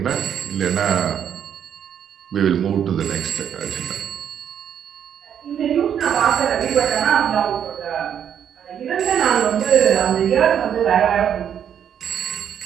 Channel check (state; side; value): quieter; left; 8.9 dB